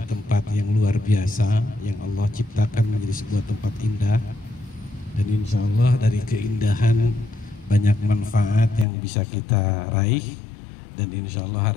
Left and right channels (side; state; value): right; drops out; at 8.8 s